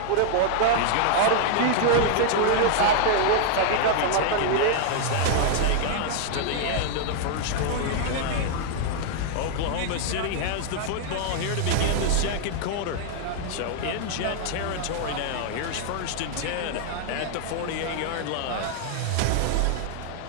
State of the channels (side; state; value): both; different; correlation -0.01